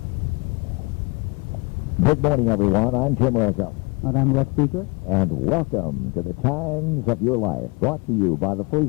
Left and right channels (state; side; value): quieter; right; 28.3 dB